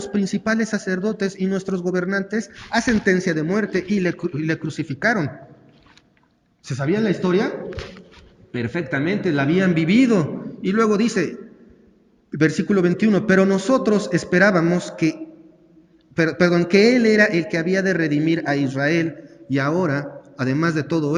principales sacerdotes y nuestros gobernantes a sentencia de muerte y le crucificaron. ¿Se sabían la historia? Perfectamente, la habían vivido. Y luego dice, versículo 21, pero nosotros esperábamos que Él era el que había de redimir a Israel, y ahora, además de todo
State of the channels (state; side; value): identical; both; correlation 1.00